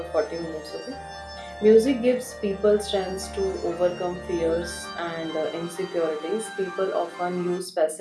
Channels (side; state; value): both; identical; correlation 1.00